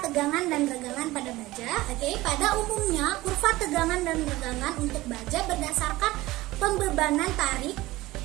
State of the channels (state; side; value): quieter; left; 18.5 dB